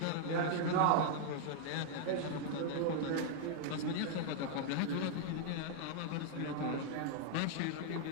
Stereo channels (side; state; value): both; different; correlation 0.00